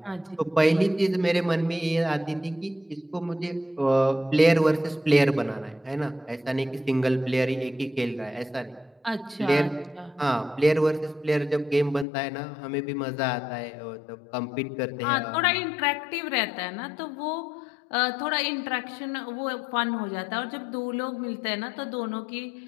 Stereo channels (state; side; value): drops out; right; at 12.1 s